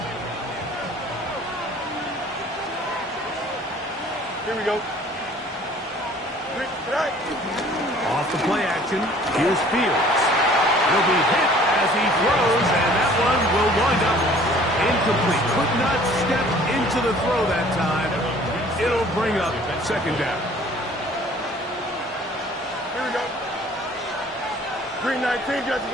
Here we go. Off the play action, here's Fields. He'll be hit as he throws, and that one will wind up incomplete. Could not step into the throw that time. It'll bring up second down. Here we go. Green 19, Judge.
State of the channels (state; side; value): normal; both; correlation 0.52